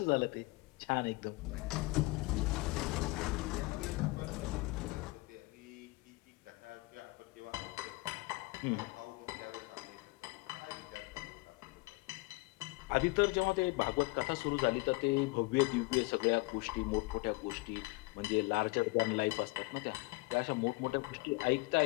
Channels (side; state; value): right; quieter; 23.9 dB